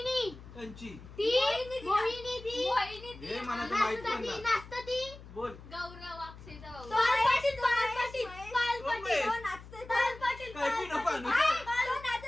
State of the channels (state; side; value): noise; left; hum, 17 dB below the sound